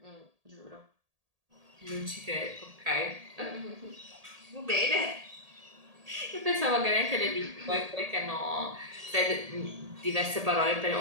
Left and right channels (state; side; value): late; left; 1.8 ms